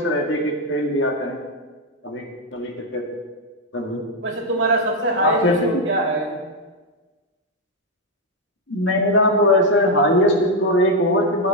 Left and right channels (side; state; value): both; normal; correlation 0.02